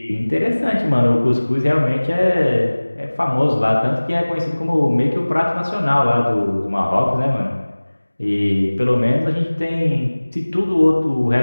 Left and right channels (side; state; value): both; inverted; correlation -1.00